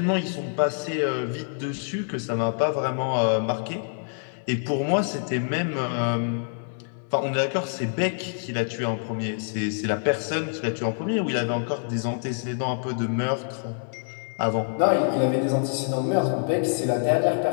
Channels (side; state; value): right; silent; digital silence